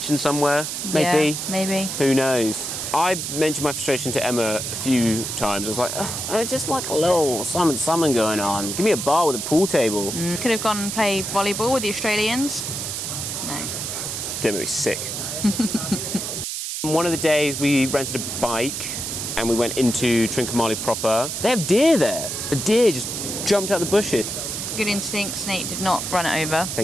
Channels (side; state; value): right; noise; hiss, 4 dB below the sound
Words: somewhere, maybe. Yeah, maybe. Who knows? I mentioned my frustration to Emma a few times. I was like, I just like a little something going on. Give me a bar with a pool table. Could have gone and played volleyball with the Australians. No. Didn't make me sick. One of the days we rented a bike and we went into Trincomalee proper. They have deer there. A deer just jumped out the bushes. Good instincts, Nate did not run it over.